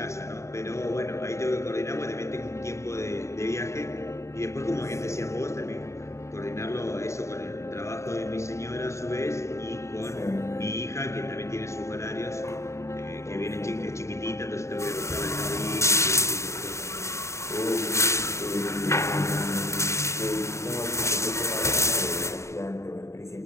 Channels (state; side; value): late; right; 0.14 ms